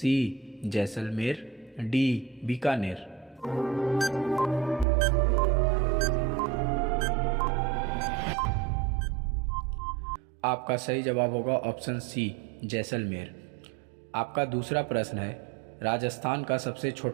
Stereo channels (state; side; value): drops out; left; at 4.9 s